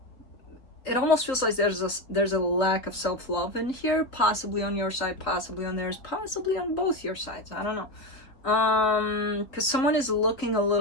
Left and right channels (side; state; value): right; late; 3.7 ms